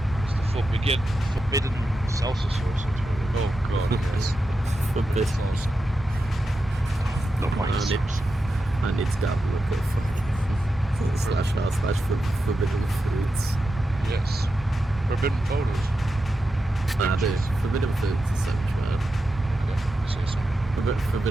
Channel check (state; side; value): normal; both; correlation 0.89